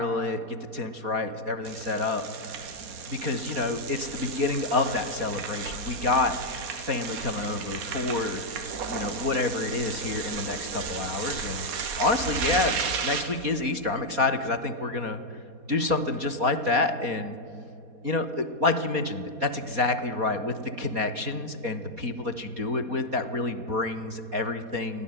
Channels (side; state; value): left; late; 4.2 ms